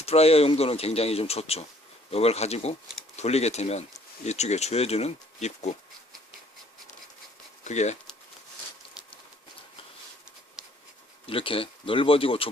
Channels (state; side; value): normal; both; correlation 0.61